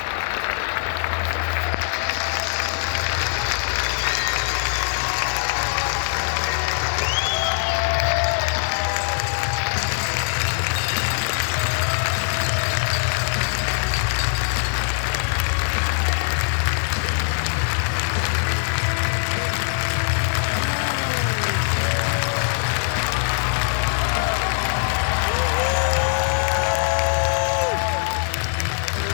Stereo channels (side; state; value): right; silent; digital silence